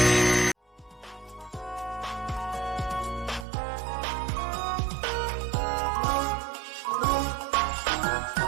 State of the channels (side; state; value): left; drops out; at 3.5 s